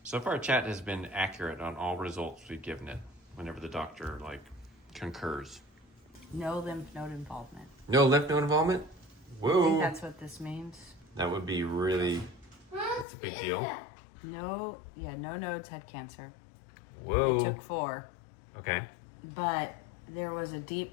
So far, chat has been accurate on all results we've given it whenever the doctor, concurs. No lymph node involvement. No lymph node involvement? I Whoa. think that's what this means. That would be really, that's a big deal. No nodes had cancer. Whoa. It took 4. Okay. But there was a deep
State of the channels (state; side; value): drops out; right; at 13.1 s